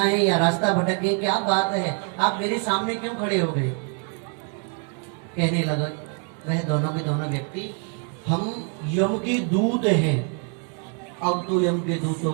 है या रास्ता भटक गए? क्या बात है, आप मेरे सामने क्यों खड़े हो गए? कहने लगा वह दोनों के दोनों व्यक्ति, हम यम के दूत हैं। अब तो यम के दूतों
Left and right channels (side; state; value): left; quieter; 38.6 dB